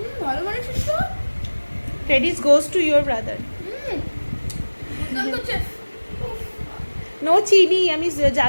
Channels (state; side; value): inverted; both; correlation -1.00